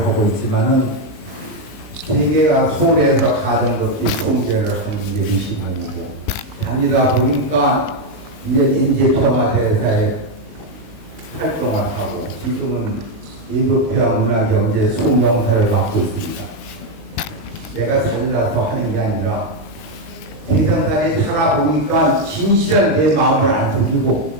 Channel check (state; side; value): late; right; 19 ms